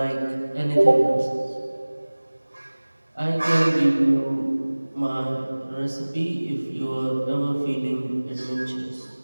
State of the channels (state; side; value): inverted; both; correlation -1.00